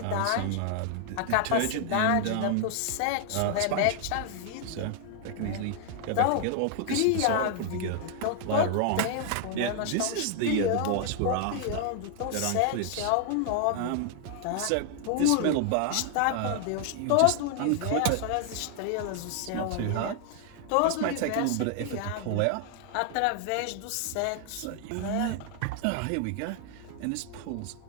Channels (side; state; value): both; different; correlation 0.00